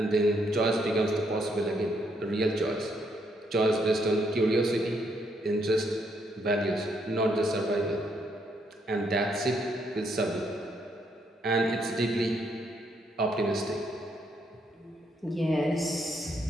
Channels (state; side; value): normal; both; correlation 0.74